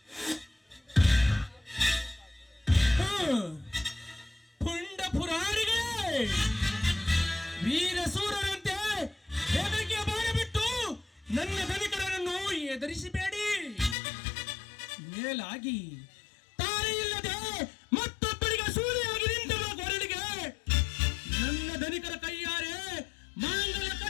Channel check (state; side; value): drops out; right; at 14.0 s